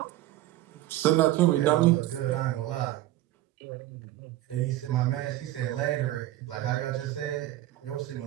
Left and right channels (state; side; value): quieter; left; 15.0 dB